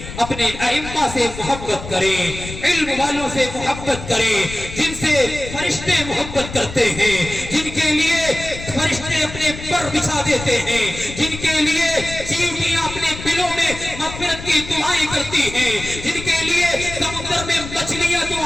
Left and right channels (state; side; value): noise; left; rumble, 11 dB below the sound